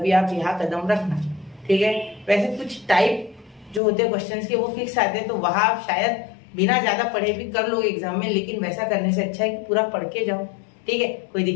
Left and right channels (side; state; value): right; drops out; at 3.8 s